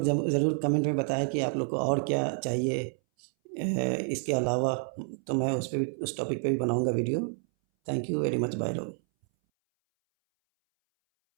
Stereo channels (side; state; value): left; silent; 59 dB below the other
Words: ज़रूर कमेंट में बताएं कि आप लोग को और क्या चाहिए इसके अलावा, तो मैं उस टॉपिक पे भी बनाऊंगा video. Thank you very much, bye लोग।